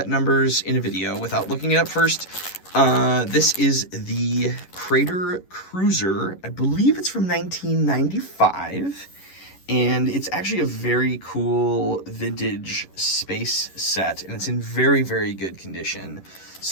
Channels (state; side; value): late; right; 11 ms